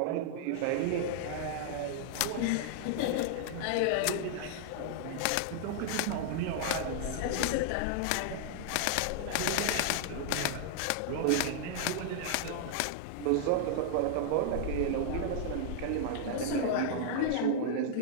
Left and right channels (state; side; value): different; both; correlation -0.01